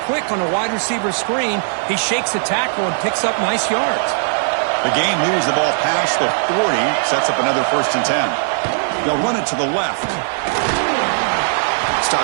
quick on a wide receiver screen. He shakes the tackle and picks up nice yards. The game moves the ball past the 40, sets up another 1st and 10. They'll run it to the left.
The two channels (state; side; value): silent; left; 62 dB below the other